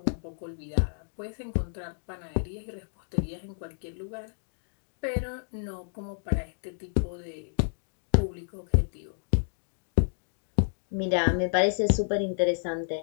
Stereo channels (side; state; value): right; silent; digital silence